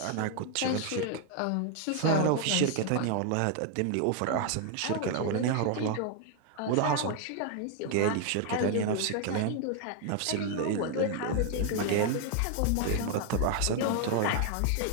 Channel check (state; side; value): different; both; correlation 0.00